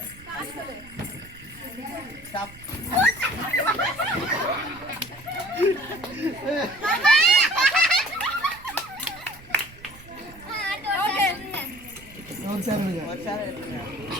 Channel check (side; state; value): right; noise; rumble, 21 dB below the sound